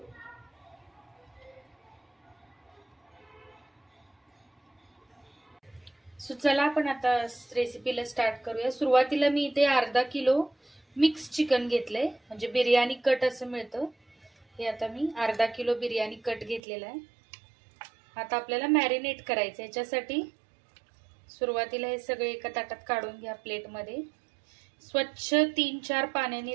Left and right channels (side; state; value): left; drops out; at 16.6 s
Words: सो चला आपण आता रेसिपीला स्टार्ट करूया। सुरुवातीला मी इथे अर्धा किलो मिक्स चिकन घेतलंय, म्हणजे बिर्याणी कट असं मिळतं। हे आता मी अर्धा किलो बिर्याणी कट घेतलेला आहे। आता आपल्याला मॅरिनेट करायचं। याच्यासाठी सुरुवातीला हे सगळे एका ताटात काढून घ्या प्लेटमध्ये। स्वच्छ 3-4